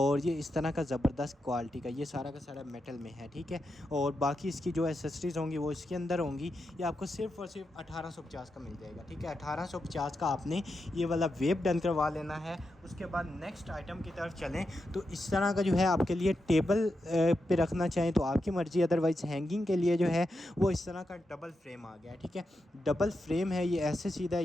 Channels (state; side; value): normal; both; correlation 0.87